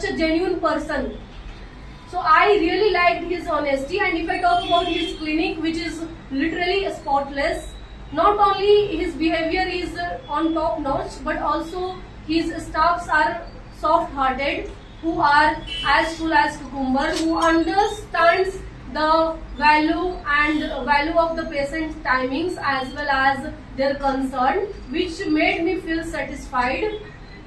a genuine person. So I really liked his honesty, and if I talk about his clinic, which is literally spotless, not only his behavior is on top notch, but also his staffs are soft hearted, who are as full as cucumber, who understands the value of the patient's timings as well as their concern, which made me feel satisfied.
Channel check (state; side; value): identical; both; correlation 1.00